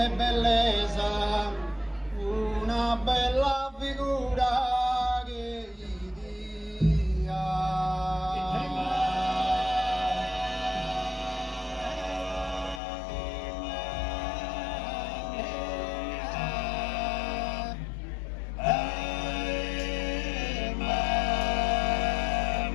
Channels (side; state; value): right; drops out; at 12.8 s